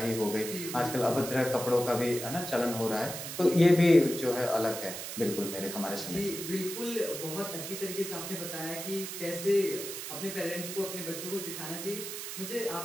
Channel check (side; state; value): right; noise; hiss, 7 dB below the sound